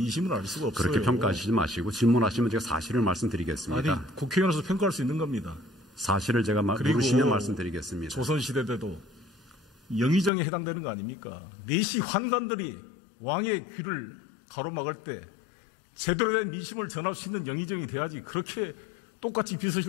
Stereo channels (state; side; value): drops out; right; at 10.3 s